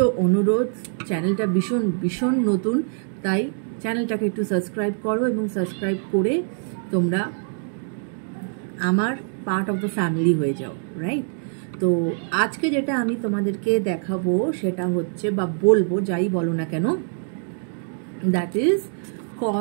অনুরোধ। চ্যানেলটা ভীষণ ভীষণ নতুন, তাই চ্যানেলটাকে একটু সাবস্ক্রাইব করো এবং সাবস্ক্রাইব করে তোমরা আমার পার্ট অফ দ্য ফ্যামিলি হয়ে যাও, রাইট? তো আজকে যেটা আমি তোমাদেরকে দেখাবো সেটা হচ্ছে, বা বলবো, যাই বলো না কেন, that is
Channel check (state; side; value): silent; left; 63 dB below the other